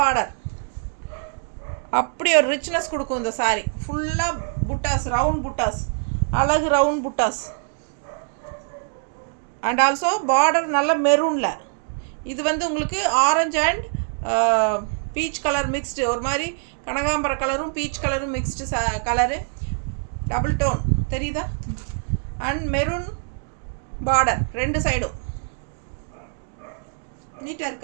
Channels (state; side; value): silent; left; 63 dB below the other